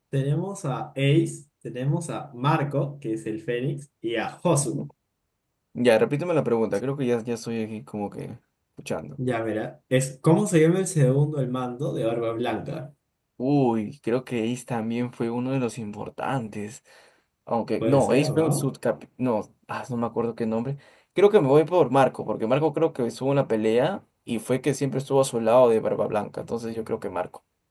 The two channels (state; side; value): identical; both; correlation 1.00